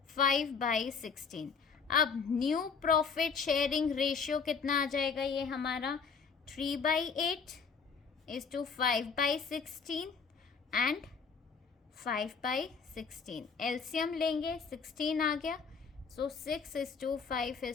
5/16। अब न्यू प्रॉफिट शेयरिंग रेशियो कितना आ जाएगा, ये हमारा 3/8 = 5/16 एंड 5/16। एलसीएम लेंगे, 16 आ गया, सो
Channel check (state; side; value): quieter; right; 5.6 dB